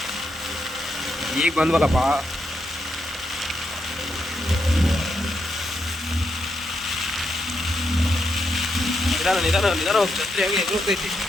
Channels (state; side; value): normal; both; correlation 0.82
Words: ಈಗ ಬಂದ್ವಲ್ಲಪ್ಪ. ನಿಧಾನ ಹೋಗಿ ಛತ್ರಿ ಆಗಿ ಎದುರುತ್ತೈತಿ.